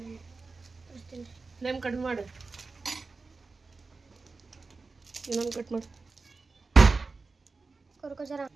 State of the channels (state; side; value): quieter; left; 4.1 dB